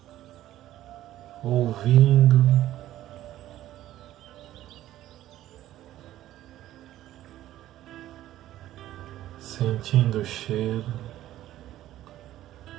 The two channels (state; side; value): quieter; left; 13.7 dB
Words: ouvindo, sentindo o cheiro.